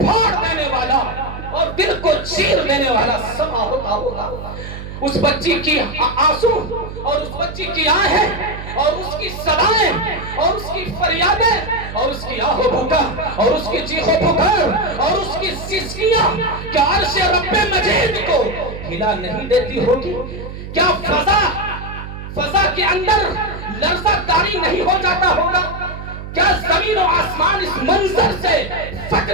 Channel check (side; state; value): right; noise; hum, 10 dB below the sound